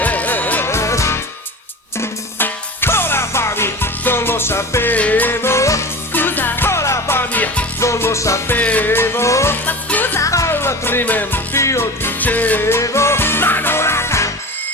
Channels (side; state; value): both; normal; correlation 0.32